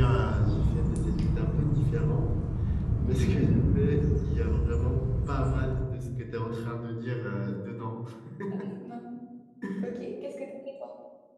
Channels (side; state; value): both; identical; correlation 1.00